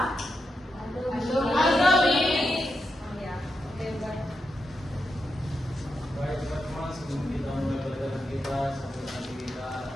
Amin. Oh ya, oke baik. Baik teman-teman, sebelum kita mulai pelajaran kita, sambil nanti kita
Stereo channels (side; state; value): both; normal; correlation 0.86